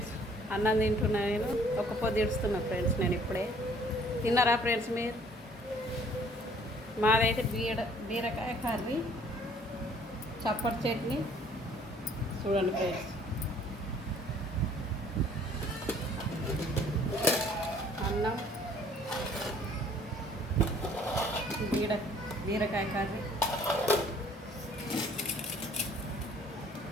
అన్నం తింటున్నా. నేను ఒక పొద్దు ఇడుస్తున్నా ఫ్రెండ్స్. నేను ఇప్పుడే తిన్నారా ఫ్రెండ్స్ మీరు? మాదైతే బీరకాయ కర్రీ, చప్పటి చట్నీ. చూడండి ఫ్రెండ్స్, అన్నం, బీరకాయ కర్రీ,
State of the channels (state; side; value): normal; both; correlation 0.57